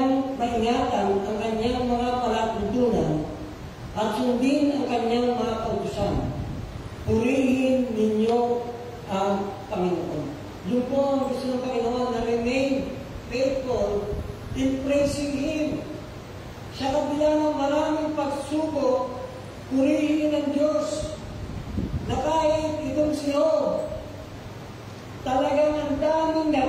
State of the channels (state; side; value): identical; both; correlation 1.00